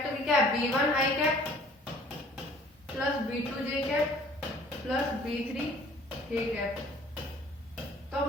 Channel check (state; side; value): normal; both; correlation 0.53